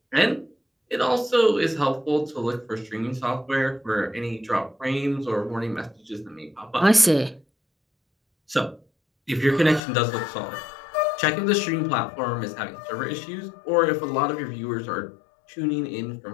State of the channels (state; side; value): drops out; right; at 9.8 s